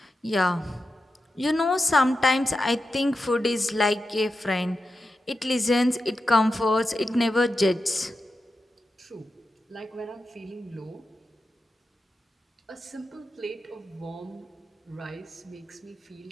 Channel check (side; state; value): both; normal; correlation 0.90